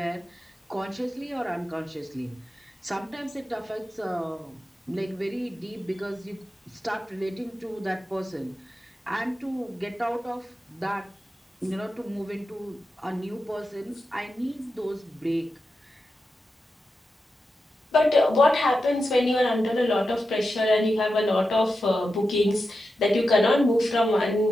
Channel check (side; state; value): both; normal; correlation 0.90